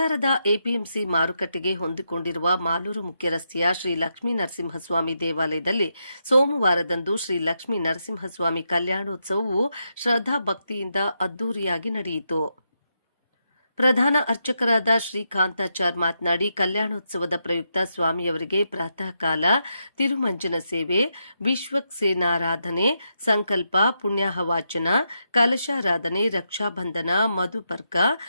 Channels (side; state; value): both; inverted; correlation -0.83